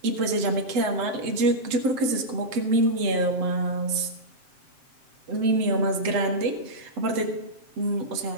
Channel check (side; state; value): left; late; 7.5 ms